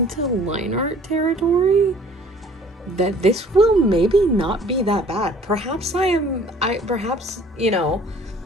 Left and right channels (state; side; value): normal; both; correlation 0.53